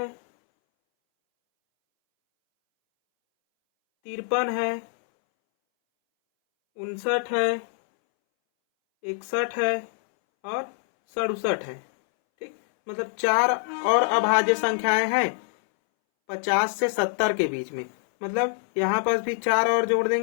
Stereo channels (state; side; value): silent; right; 62 dB below the other